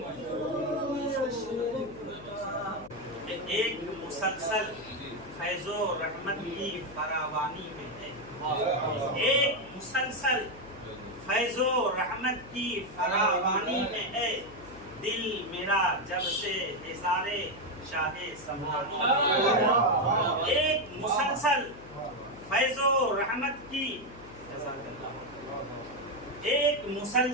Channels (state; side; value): noise; left; hum, 18 dB below the sound